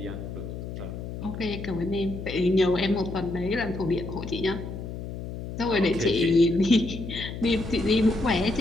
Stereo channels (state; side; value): noise; left; hum, 8 dB below the sound